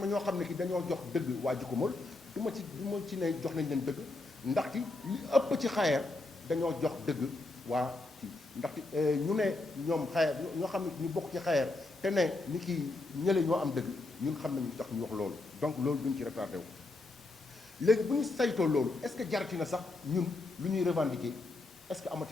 ñoo xam ne ki dañoo jox dëgg waa Djikomol du ma ci ne jox nañ leen dëgg ndaxte li ëpp ci Xayer dañoo jox dëgg waa kii ndaxte ñu ne ñoom Xayer ñoo xam ne ñu bokk ci Xayer te ne ni ki ñële ñoo am dëgg ñun xam nañu tax ñu wax loolu donc loolu duñ ci retardé wu léegi bu ñu saytoo loolu est-ce que jarati na sax ñun lu ñuy revendiquer est-ce que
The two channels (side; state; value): right; quieter; 3.1 dB